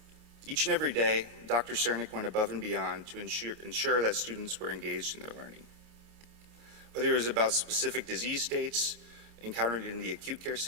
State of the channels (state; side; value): late; left; 28 ms